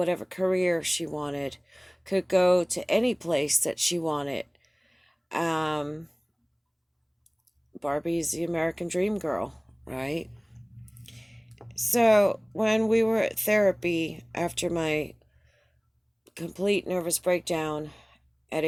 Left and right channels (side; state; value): both; identical; correlation 1.00